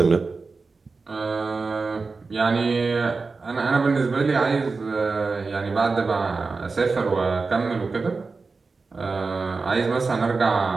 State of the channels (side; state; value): left; quieter; 4.2 dB